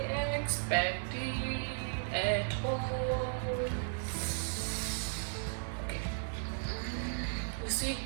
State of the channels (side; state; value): left; silent; digital silence